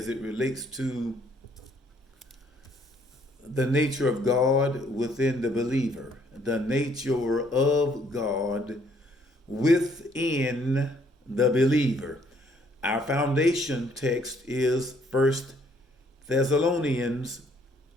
it relates to the nature of God within the believer, the nature of God within the believer. Our foundation text is First Thessalonians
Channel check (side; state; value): both; normal; correlation 0.65